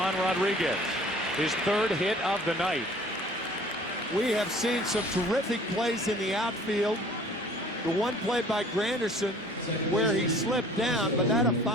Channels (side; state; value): both; normal; correlation 0.51